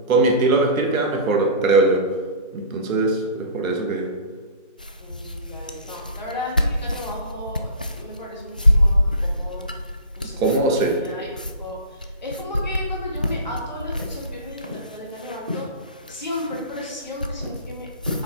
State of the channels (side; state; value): both; inverted; correlation -0.35